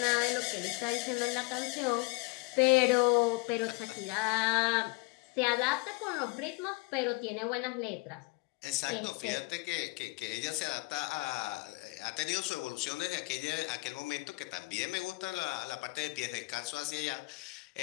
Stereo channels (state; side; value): quieter; right; 27.2 dB